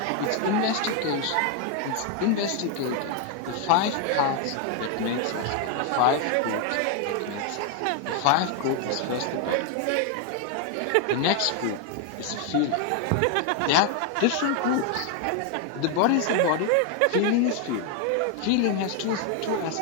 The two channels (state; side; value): different; both; correlation 0.01